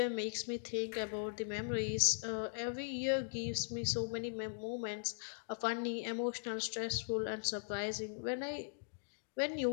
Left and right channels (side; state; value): right; silent; digital silence